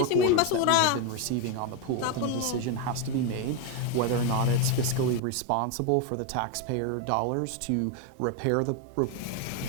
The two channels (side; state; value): both; different; correlation 0.02